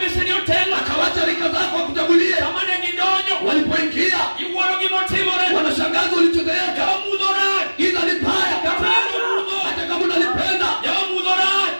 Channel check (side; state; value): both; inverted; correlation -1.00